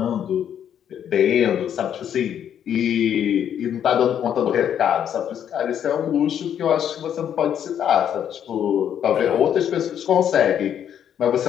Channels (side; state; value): right; quieter; 9.4 dB